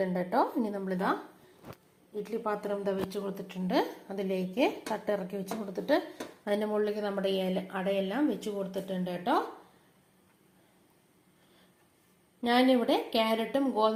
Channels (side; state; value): both; identical; correlation 1.00